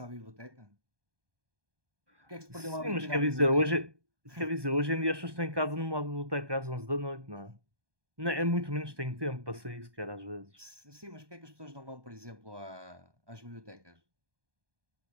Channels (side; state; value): left; late; 1.2 ms